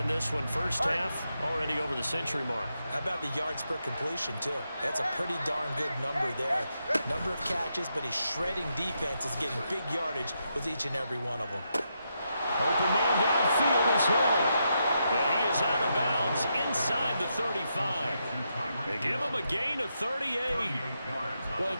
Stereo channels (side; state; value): both; inverted; correlation -0.83